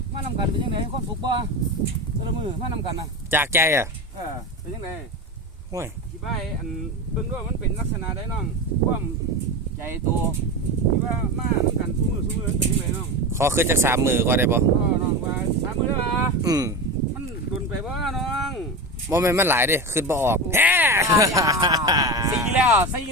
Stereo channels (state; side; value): normal; both; correlation 0.23